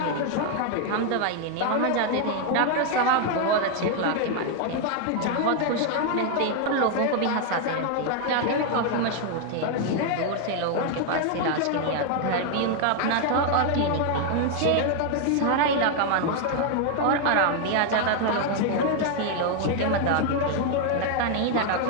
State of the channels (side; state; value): both; different; correlation 0.00